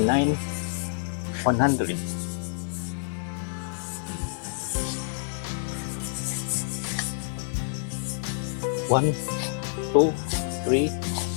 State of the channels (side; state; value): right; silent; 60 dB below the other